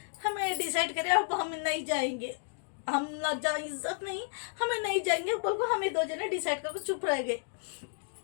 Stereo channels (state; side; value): silent; right; digital silence